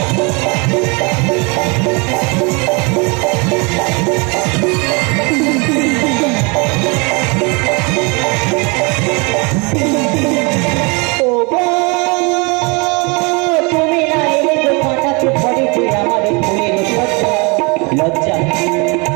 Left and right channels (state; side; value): quieter; left; 29.8 dB